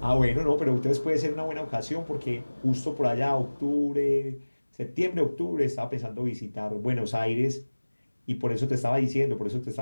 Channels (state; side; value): inverted; both; correlation -1.00